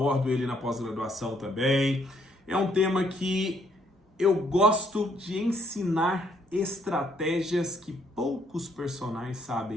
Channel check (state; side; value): normal; both; correlation 0.69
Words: ele na pós-graduação também. É um tema que eu gosto de ensinar estratégias que poucos personagens